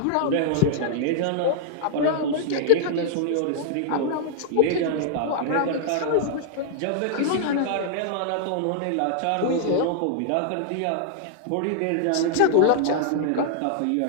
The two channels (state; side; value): different; both; correlation -0.01